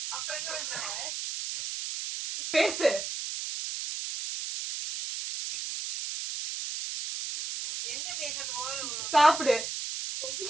அப்புறம் என்ன பண்ற? பேசு. என்ன பேசுறது? போது சாப்பிடு.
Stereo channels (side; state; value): right; noise; hiss, 5 dB below the sound